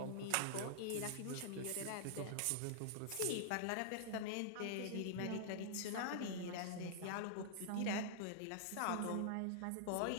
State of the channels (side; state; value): both; different; correlation -0.01